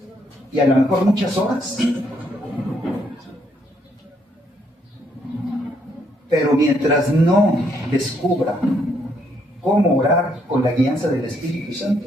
y a lo mejor muchas horas, pero mientras no descubra cómo orar con la guianza del Espíritu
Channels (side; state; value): both; normal; correlation 0.72